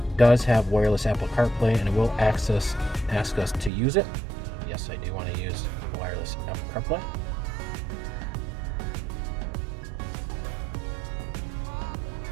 does have wireless Apple CarPlay, and it will ask us to use it. Yes, I do want to use wireless Apple CarPlay.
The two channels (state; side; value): drops out; left; at 3.7 s